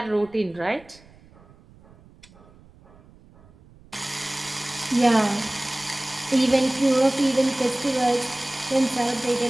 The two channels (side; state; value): right; noise; rumble, 26 dB below the sound